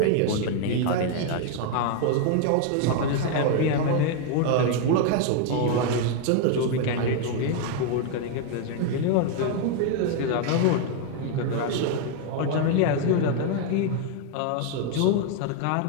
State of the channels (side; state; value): both; different; correlation 0.00